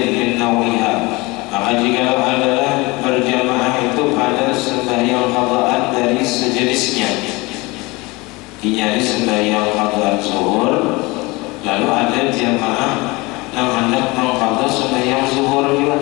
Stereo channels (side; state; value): right; quieter; 23.9 dB